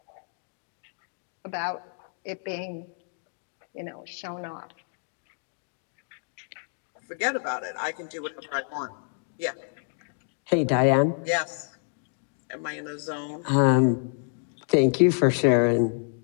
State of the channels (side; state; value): right; silent; digital silence